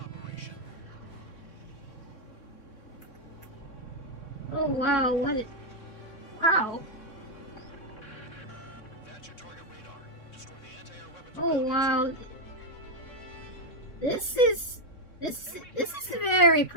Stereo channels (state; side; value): late; right; 3.6 ms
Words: Oh wow, wow. That's your target radar. Destroy the anti-air weapons. Oh wow. This is very